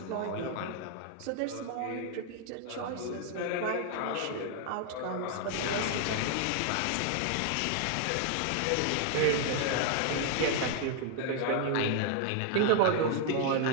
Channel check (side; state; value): both; different; correlation 0.00